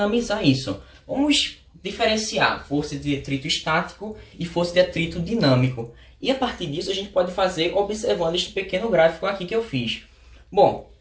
isso. Vamos diferenciar força de atrito estático e força de atrito dinâmico. E a partir disso a gente pode fazer observando este pequeno gráfico aqui que eu fiz. Bom,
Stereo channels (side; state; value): both; identical; correlation 1.00